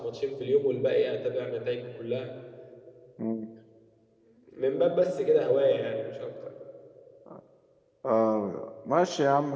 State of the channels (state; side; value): identical; both; correlation 1.00